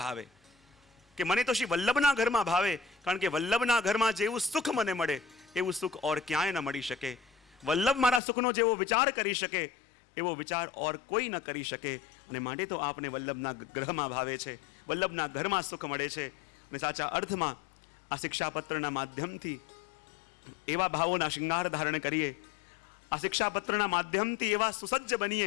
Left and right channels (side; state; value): right; drops out; at 8.2 s